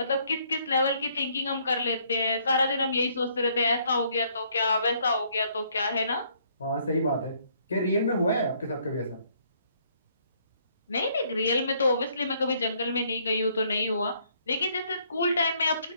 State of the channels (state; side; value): inverted; both; correlation -0.67